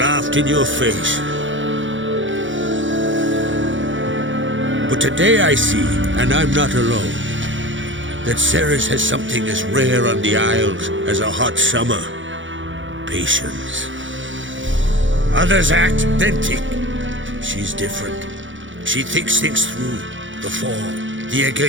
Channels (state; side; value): late; left; 0.56 ms